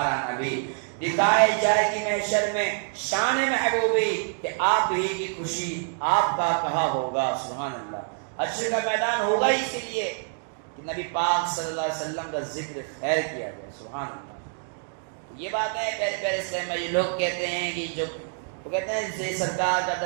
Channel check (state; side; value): silent; left; digital silence